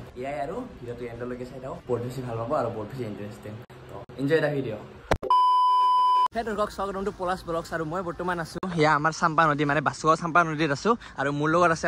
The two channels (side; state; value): both; identical; correlation 1.00